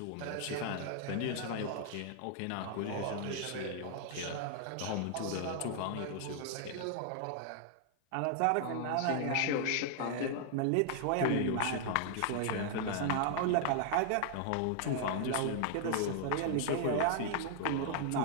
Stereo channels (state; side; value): different; both; correlation 0.00